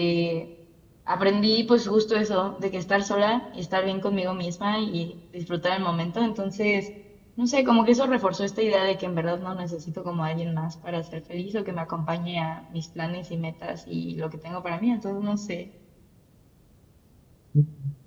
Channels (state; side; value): identical; both; correlation 1.00